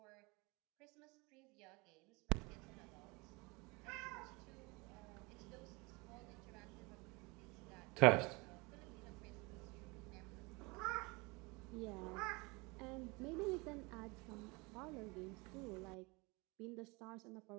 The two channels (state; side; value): quieter; left; 26.5 dB